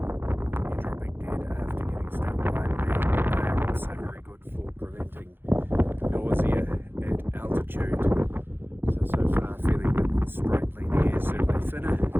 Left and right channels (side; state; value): left; late; 0.10 ms